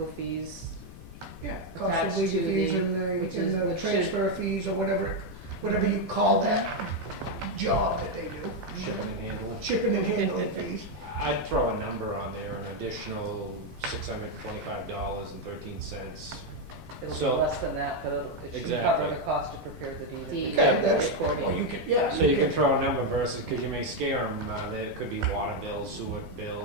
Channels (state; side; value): noise; left; rumble, 14 dB below the sound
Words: fees. Yeah, cost Attached of legal to fees the- and which the should- transfer fees or whatever you call that job that they do. shipping and handling. Shipping and handling fees. I'd throw a number on there, an additional $625.13. It'll be So- less than that, but it should Exactly. cover the cost to prepare the deed. Deed. Okay, that's, recording. well, you could, yeah. So you can throw a number versus, because you may scare them, there could be water bills, sewer